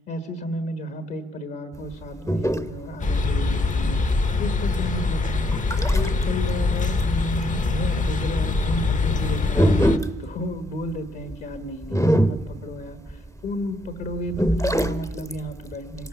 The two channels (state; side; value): normal; both; correlation 0.75